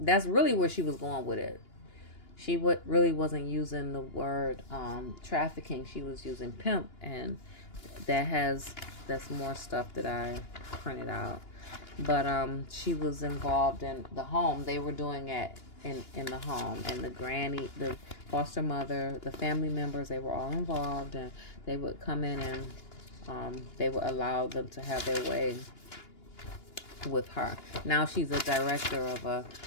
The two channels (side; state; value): right; late; 2.9 ms